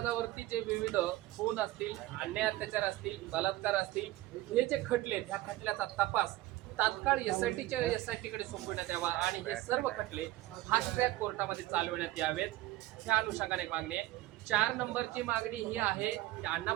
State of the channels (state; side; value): quieter; left; 17.1 dB